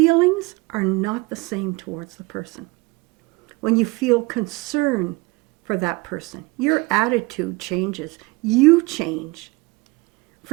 are not the same towards the person. When you feel concern for that person, your attitude changes. You change.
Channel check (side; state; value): left; quieter; 24.1 dB